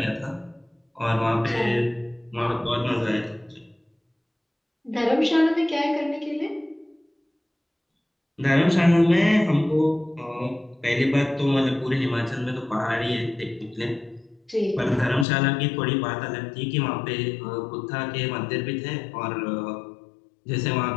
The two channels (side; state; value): right; drops out; at 15.2 s